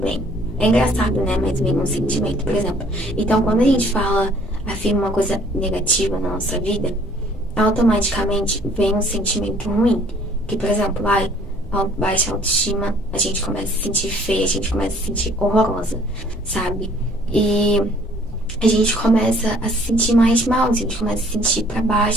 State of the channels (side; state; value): both; normal; correlation 0.58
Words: É engraçado, né? Mas vem um sentimento, por exemplo. Então, quando a gente afirma uma coisa negativa na nossa vida, automaticamente vem um sentimento ruim. Que, por exemplo, baixa autoestima, a gente começa a se sentir feia, a gente começa a se sentir horrorosa, sabe? E a gente começa a se sentir mais mal, a gente começa a se sentir pra